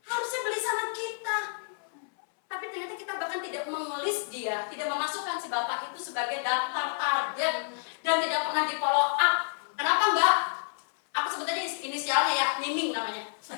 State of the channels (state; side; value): silent; right; 58 dB below the other